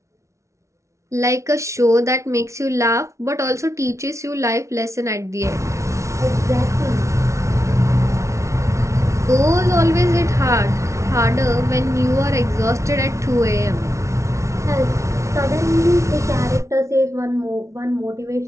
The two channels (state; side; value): late; left; 0.14 ms